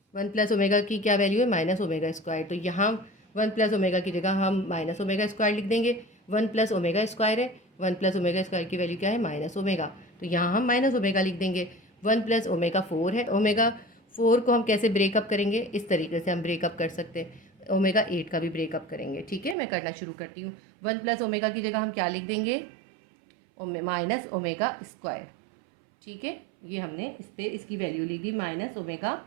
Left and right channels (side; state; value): left; drops out; at 19.6 s